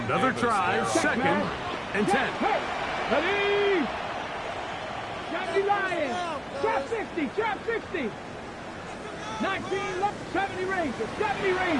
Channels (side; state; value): both; identical; correlation 1.00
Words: Another try, second and 10. Ready? Johnny Lion. Trap 60, trap 60. 19, 70 Rangers, 70